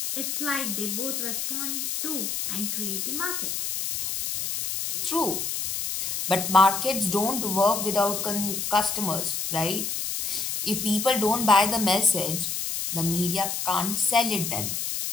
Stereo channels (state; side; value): noise; left; hiss, 2 dB below the sound